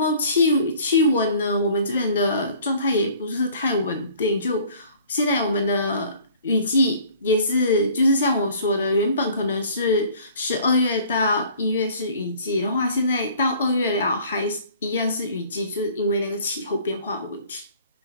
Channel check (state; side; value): inverted; both; correlation -0.52